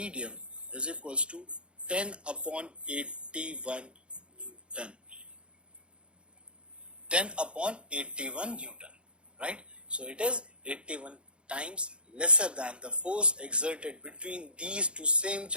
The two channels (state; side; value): late; left; 0.057 ms